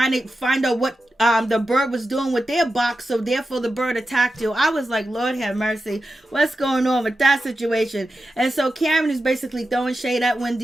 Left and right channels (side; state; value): both; normal; correlation 0.91